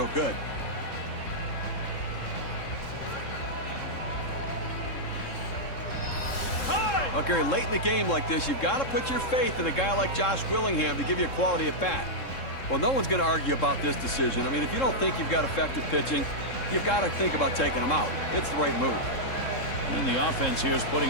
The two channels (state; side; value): late; right; 3.7 ms